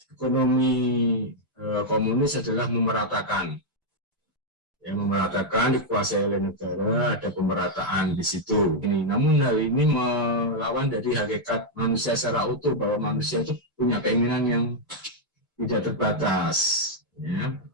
ekonomi komunis adalah memeratakan. Yang memeratakan dikuasai oleh negara, ada pemerataan di situ. Namun hal ini melawan dari hakikat manusia secara utuh, bahwa manusia itu punya keinginan yang tidak terbatas. Ya.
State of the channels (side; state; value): both; normal; correlation -0.02